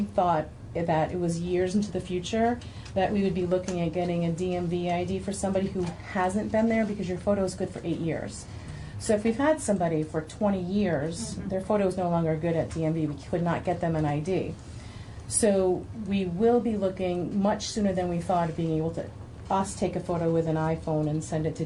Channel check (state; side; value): identical; both; correlation 1.00